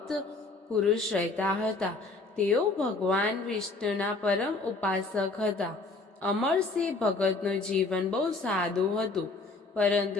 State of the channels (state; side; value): quieter; right; 3.5 dB